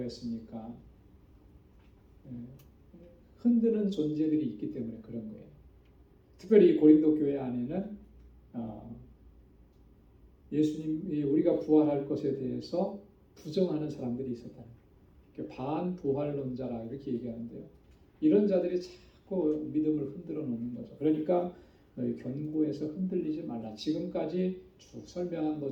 했습니까? 흔드는 존재들이 있기 때문에 그런 거예요. 특별히 고린도 교회 안에는 예수님이 우리가 부활할 것에 대해서 부정하는 사람들이 있었다. 반부활론자라 이렇게 얘기하는데요. 이런 자들이 자꾸 믿음을 흔들어 놓는 거죠. 그러니까 너희 견고해서 흔들리지 말라. 지금까지 쭉 설명한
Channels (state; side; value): identical; both; correlation 1.00